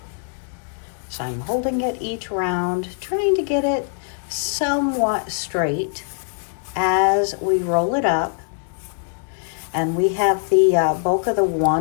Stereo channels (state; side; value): silent; right; 55 dB below the other